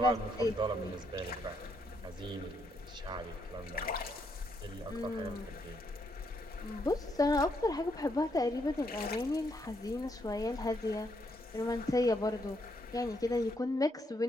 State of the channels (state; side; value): normal; both; correlation 0.76